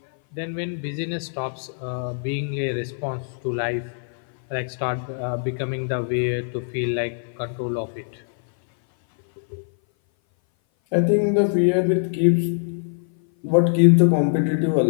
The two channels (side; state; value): right; silent; 58 dB below the other